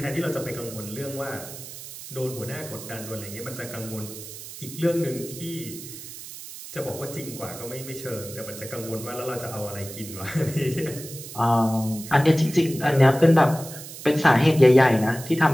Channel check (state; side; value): noise; right; hiss, 13 dB below the sound